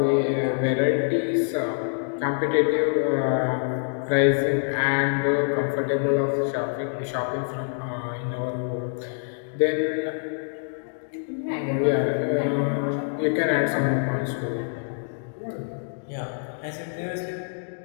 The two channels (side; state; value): right; silent; digital silence